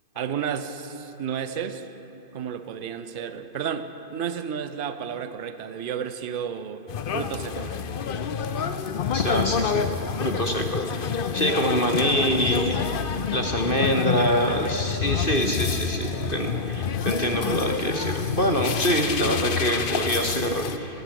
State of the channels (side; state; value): right; late; 2.5 ms